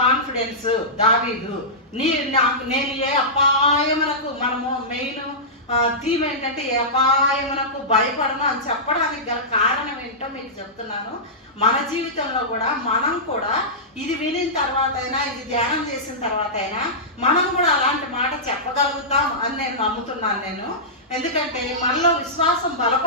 కాన్ఫిడెన్స్? దావీదు, నేను ఏ అపాయమునకు, మనము మెయిన్ థీమ్ ఏంటంటే ఏ అపాయమునకు భయపడను అని చెప్పడానికి గల కారణం ఏంటో మీకు చెప్తున్నాను. మన జీవితంలో కూడా మనం కూడా ఇది వినిన తర్వాత అయినా, ఇది ధ్యానం చేసిన తర్వాత అయినా మనం కూడా అలాంటి మాట చెప్పగలుగుతాం అని నేను నమ్ముతున్నాను. ఎందుకంటే మనలో విశ్వాసం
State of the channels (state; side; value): normal; both; correlation -0.15